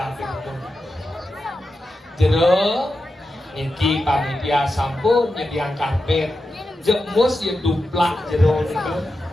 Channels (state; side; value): normal; both; correlation 0.90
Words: itu. Jero, niki panitia sampun nyediang karpet. Jemus yang duplak jero niku.